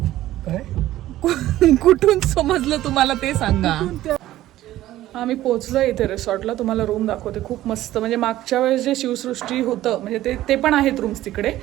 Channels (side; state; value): left; quieter; 14.6 dB